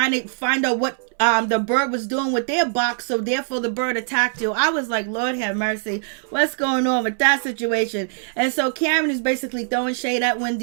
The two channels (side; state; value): left; silent; 62 dB below the other